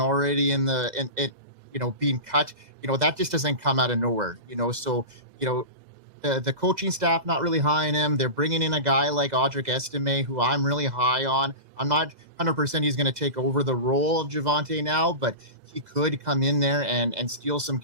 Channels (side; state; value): left; late; 2.0 ms